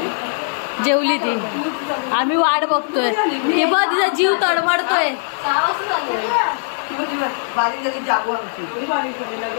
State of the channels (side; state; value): right; silent; digital silence